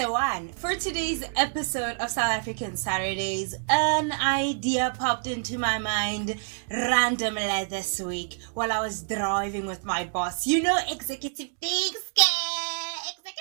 one. For today's episode of South African Saturdays, an idea popped into my mind randomly this week while I was driving with my boss. You know, executive things,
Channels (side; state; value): left; silent; digital silence